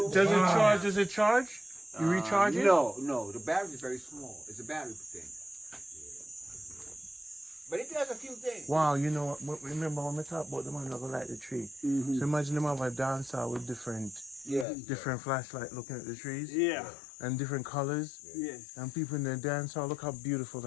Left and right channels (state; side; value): drops out; right; at 14.7 s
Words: it charge? Does it charge? You recharge it? No. The battery is very small. It's a battery thing. But it does a few things. Wow, you know, remember when we talk about the man that go like the tree? So imagine them have a dancer with different Yeah. different flashlight looking at the trees, Yeah. and different colors, Yes. and people in the dance hall. Look how beautiful